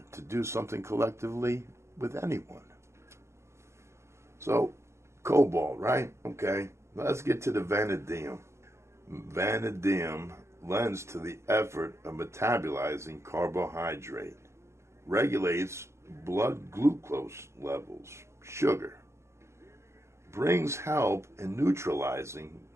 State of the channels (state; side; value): late; left; 0.13 ms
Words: to do something collectively with anyone. So, cobalt, right? Okay, let's get to the vanadium. Vanadium lends to the effort of metabolizing carbohydrate, regulates blood glucose levels, sugar, brings help in neutralizing